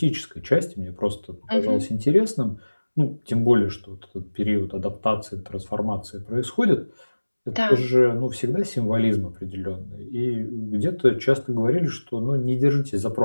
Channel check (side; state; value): both; inverted; correlation -1.00